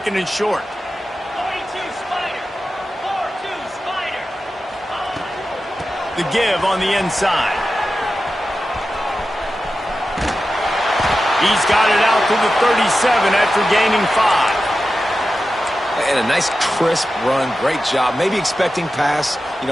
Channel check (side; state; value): both; normal; correlation 0.93